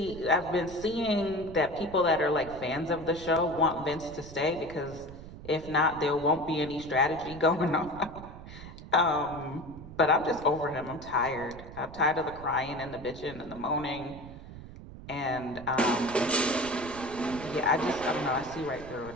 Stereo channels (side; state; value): right; noise; rumble, 14 dB below the sound